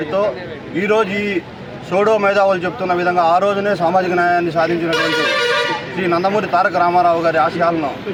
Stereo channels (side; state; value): both; identical; correlation 1.00